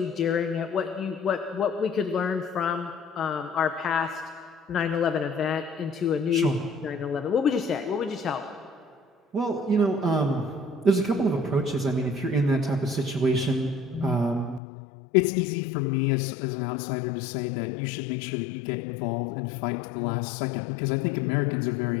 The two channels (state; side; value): drops out; right; at 14.6 s